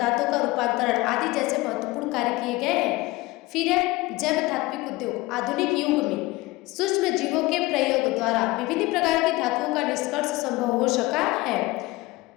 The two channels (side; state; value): right; quieter; 20.5 dB